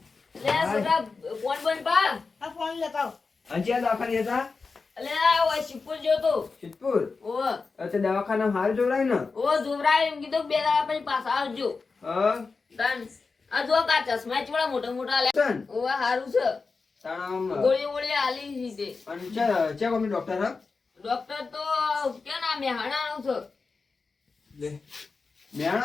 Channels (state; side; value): quieter; right; 4.4 dB